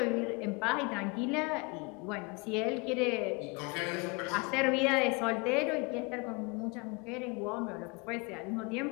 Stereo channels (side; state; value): right; quieter; 28.9 dB